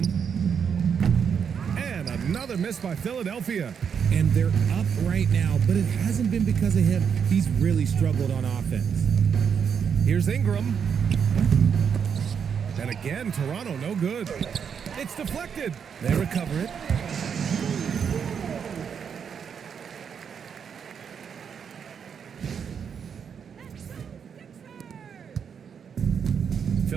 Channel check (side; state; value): left; quieter; 7.1 dB